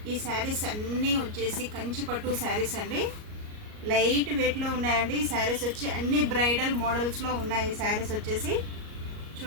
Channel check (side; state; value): left; late; 38 ms